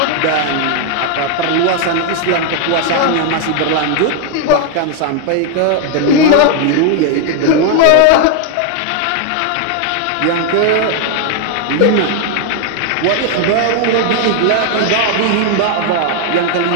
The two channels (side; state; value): both; different; correlation 0.00